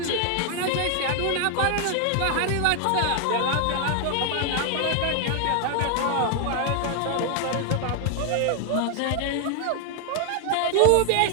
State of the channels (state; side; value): different; both; correlation 0.00